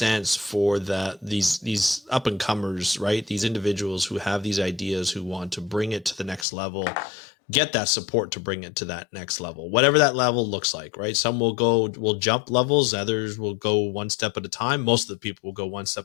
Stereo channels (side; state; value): right; drops out; at 6.5 s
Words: for these up and comers, right? These individuals who have these ideas, who want to bring it to the next level, get that support to bring it to that next level, whatever that level looks like, right? Some will jump levels, others will go one step at a time. Most of the people will go one